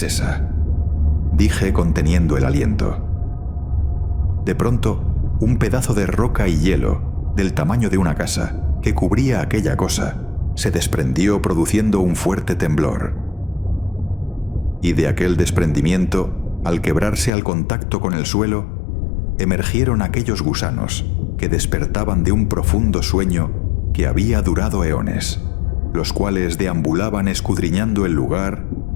esa?, dije conteniendo el aliento. De pronto, un pedazo de roca y hielo, del tamaño de una casa, que cubría aquella cosa, se desprendió produciendo un fuerte temblor. Y de aquel desprendimiento, al quebrarse al contacto con el suelo, emergieron aquellos gusanos que despertaban de un profundo sueño que había durado eones. los cuales deambulaban escudriñando el lugar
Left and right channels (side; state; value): right; drops out; at 17.3 s